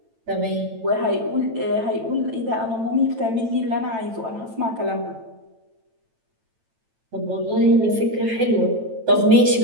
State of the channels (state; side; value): late; left; 9.0 ms